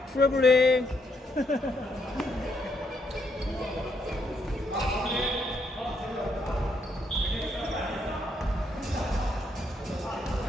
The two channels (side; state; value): both; normal; correlation 0.75